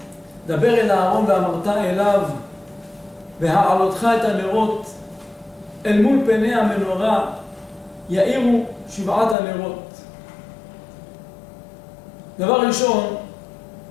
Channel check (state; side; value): drops out; right; at 9.3 s